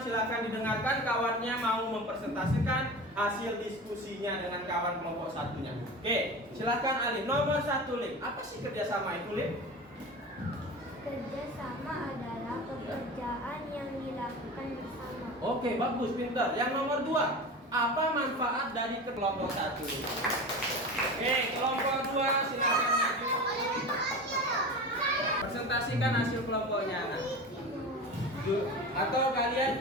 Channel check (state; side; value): normal; both; correlation 0.30